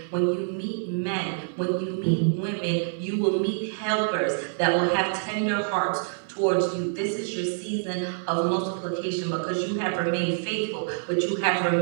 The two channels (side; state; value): left; silent; 61 dB below the other